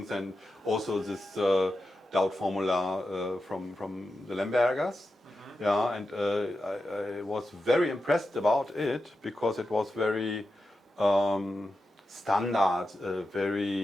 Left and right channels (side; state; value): both; normal; correlation 0.90